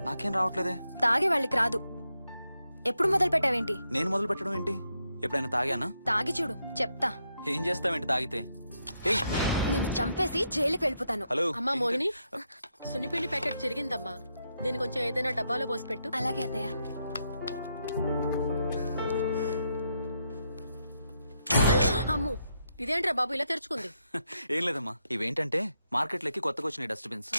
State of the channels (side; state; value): both; inverted; correlation -0.81